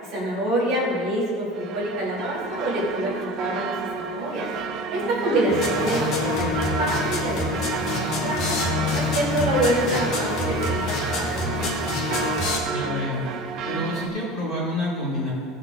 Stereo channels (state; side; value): normal; both; correlation 0.35